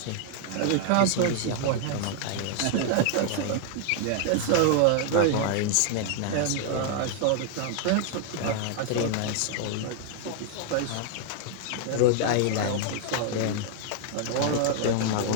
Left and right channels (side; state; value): both; different; correlation 0.00